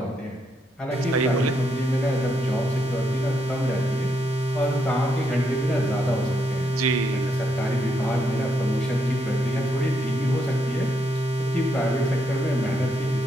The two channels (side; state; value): both; normal; correlation 0.78